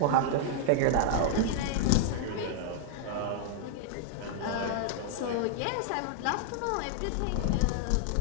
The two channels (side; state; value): both; different; correlation -0.01